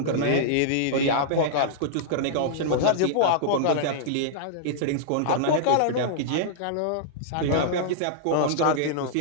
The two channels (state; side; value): different; both; correlation -0.02